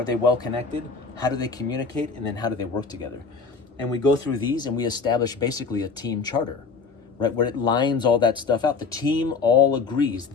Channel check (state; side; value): quieter; right; 4.9 dB